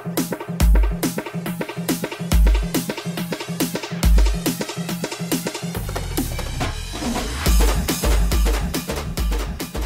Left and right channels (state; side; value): identical; both; correlation 1.00